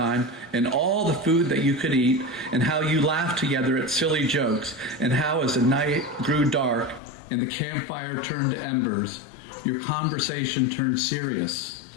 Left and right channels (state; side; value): drops out; right; at 7.0 s